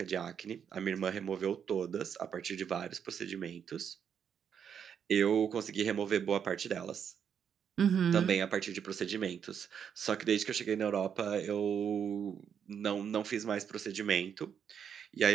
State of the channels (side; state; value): left; quieter; 7.8 dB